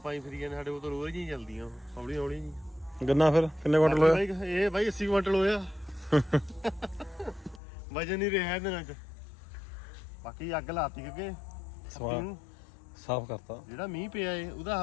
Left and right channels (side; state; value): right; drops out; at 7.6 s